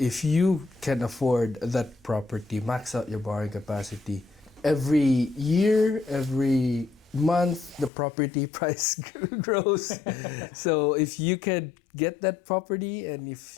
you can afford that property, max out your borrowing capacity. Every year, every month, the property price grows. So if you can get that property, and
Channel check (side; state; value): right; drops out; at 7.9 s